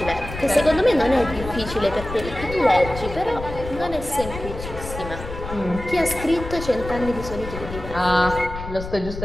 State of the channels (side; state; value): left; noise; rumble, 10 dB below the sound